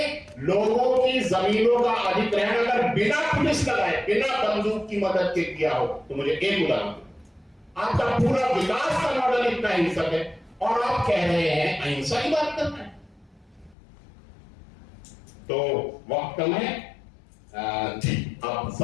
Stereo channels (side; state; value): right; drops out; at 13.8 s